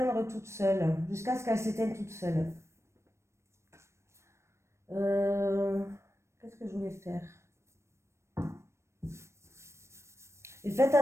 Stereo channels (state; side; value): late; left; 0.13 ms